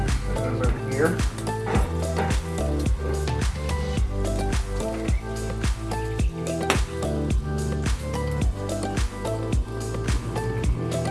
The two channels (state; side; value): identical; both; correlation 1.00